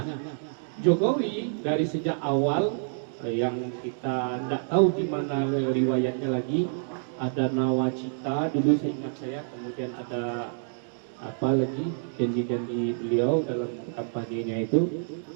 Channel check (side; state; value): left; silent; digital silence